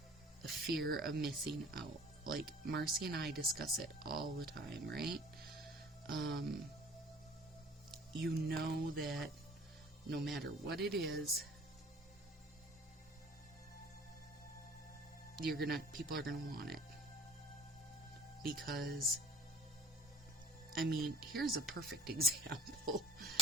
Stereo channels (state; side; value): normal; both; correlation 0.48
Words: fear of missing out. Like, Marcy and I discuss it all the time, right? You know that no matter what it is, people are gonna want it. Because, I mean, here's a perfect example.